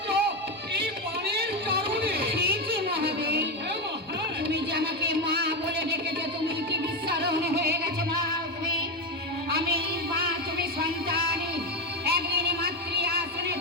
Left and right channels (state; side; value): normal; both; correlation 0.11